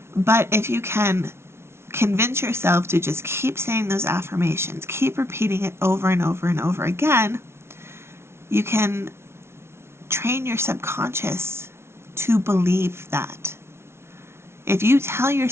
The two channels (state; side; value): late; left; 0.12 ms